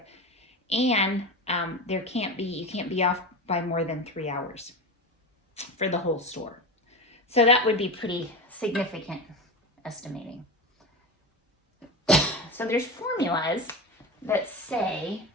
And you can't be off by more than 3 hours for the whole store. So that would be pretty significant estimating. So there's formulas that say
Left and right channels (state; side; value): normal; both; correlation 0.23